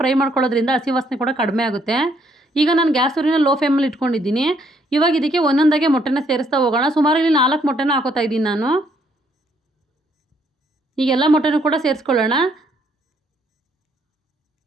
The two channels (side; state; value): both; normal; correlation 0.69